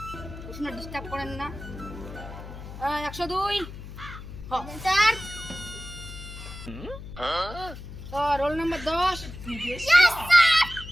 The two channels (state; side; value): noise; left; hum, 12 dB below the sound